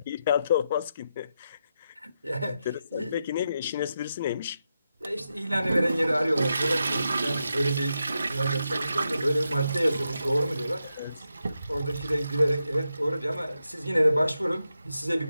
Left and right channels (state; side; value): inverted; both; correlation -0.86